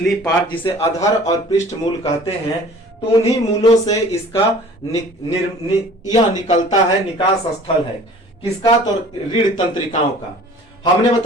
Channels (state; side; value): normal; both; correlation 0.48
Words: पार्ट जिसे अधर और पृष्ठ मूल कहते हैं, तो उन्हीं मूलों से इसका यह निकलता है, निकास स्थल है। किसका? तो रीढ़ तंत्रिकाओं का। हमने